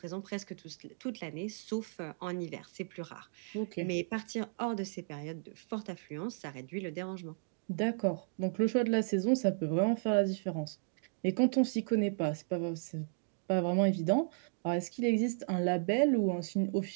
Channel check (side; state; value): left; silent; digital silence